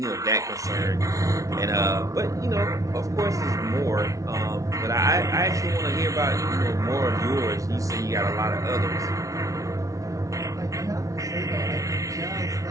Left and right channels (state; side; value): late; left; 0.16 ms